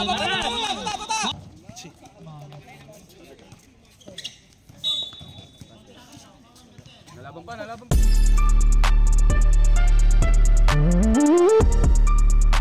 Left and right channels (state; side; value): identical; both; correlation 1.00